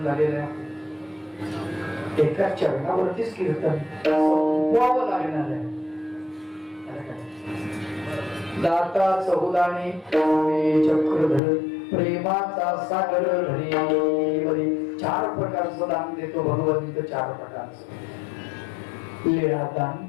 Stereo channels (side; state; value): right; drops out; at 11.4 s